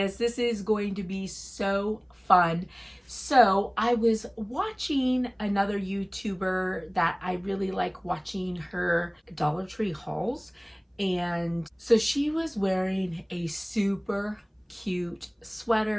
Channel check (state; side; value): identical; both; correlation 1.00